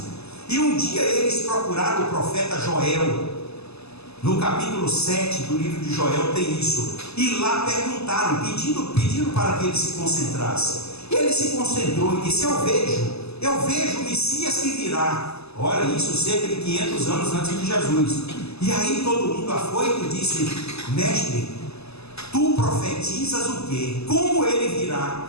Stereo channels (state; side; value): late; right; 0.79 ms